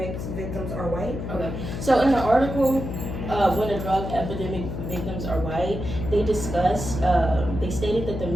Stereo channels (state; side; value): noise; left; hum, 6 dB below the sound